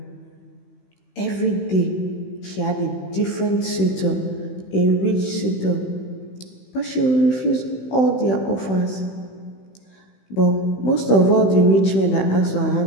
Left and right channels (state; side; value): late; right; 16 ms